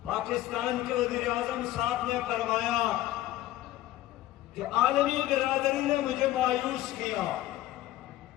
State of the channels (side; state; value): right; quieter; 15.0 dB